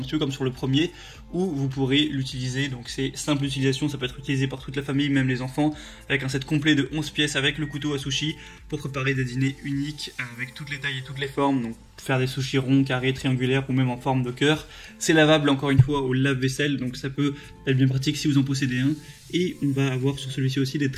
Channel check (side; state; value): both; identical; correlation 1.00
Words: peu comme sur le premier, où vous pourrez l'utiliser. Donc c'est simple utilisation, ça peut être utilisé par toute la famille, même les enfants, avec un set complet de 11 pièces avec le couteau à sushi pour préparer des dîners uniques avec toutes les tailles et toutes les formes. Donc faire des sushis ronds, carrés, triangulaires ou même en forme de cœur. C'est lavable encore une fois au lave-vaisselle, donc ça peut être bien pratique si vous en possédez un. Et on va avoir sur celui-ci aussi des